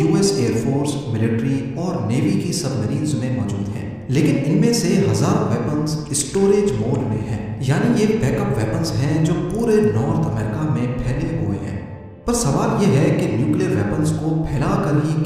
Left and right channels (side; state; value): both; identical; correlation 1.00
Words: ایئر فورس، ملٹری اور نیوی کی سب مرینز میں موجود ہیں، لیکن ان میں سے ہزاروں ویپنز اسٹوریج موڈ میں ہیں، یعنی یہ بیک اپ ویپنز ہیں جو پورے نارتھ امریکہ میں پھیلے ہوئے ہیں۔ پر سوال یہ ہے کہ نیوکلیر ویپنز کو پھیلا کر ہی